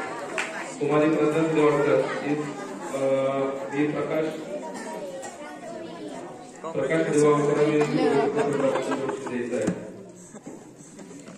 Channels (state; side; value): identical; both; correlation 1.00